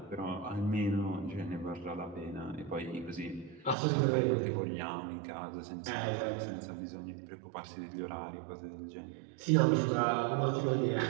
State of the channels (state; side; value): drops out; left; at 3.8 s